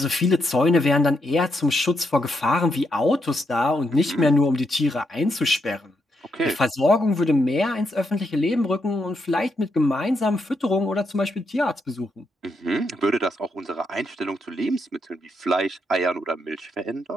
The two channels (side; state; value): both; normal; correlation 0.80